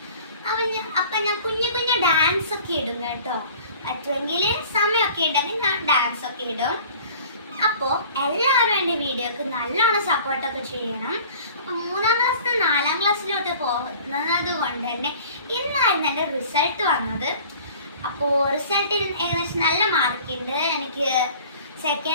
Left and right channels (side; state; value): both; inverted; correlation -0.47